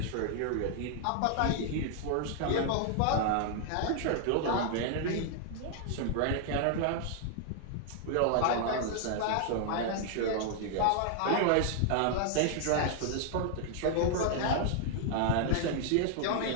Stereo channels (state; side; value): different; both; correlation 0.00